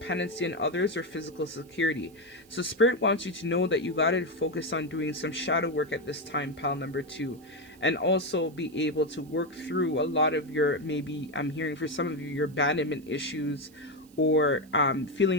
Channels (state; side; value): noise; right; hiss, 28 dB below the sound